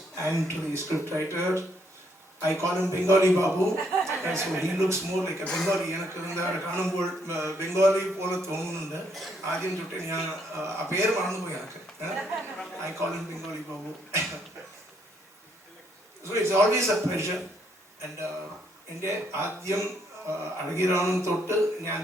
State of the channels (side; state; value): both; normal; correlation 0.71